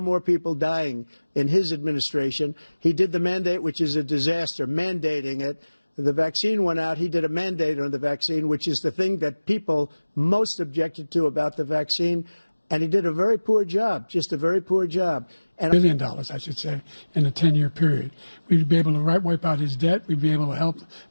more people dying in his administration. He did the mandate, which is a disaster, mandating it. The vaccine went out. He did a mandate on the vaccine, which is the thing that people most objected to about the vaccine. And he did a very poor job, just a very poor job. And $1 billion, I should say, in a 10-year period. We'd be able to wipe out his debt. We'd be able to help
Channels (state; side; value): inverted; both; correlation -1.00